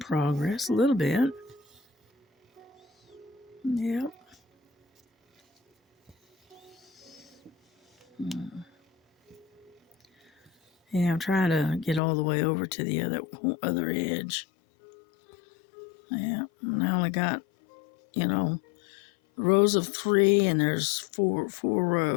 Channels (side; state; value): right; drops out; at 12.0 s